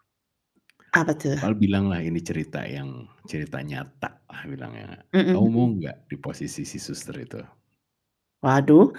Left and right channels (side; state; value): both; identical; correlation 1.00